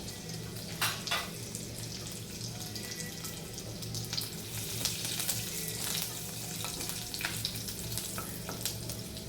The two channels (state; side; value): identical; both; correlation 1.00